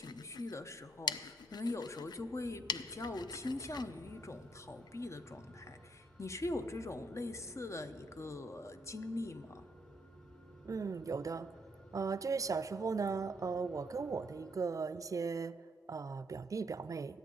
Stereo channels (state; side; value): normal; both; correlation 0.72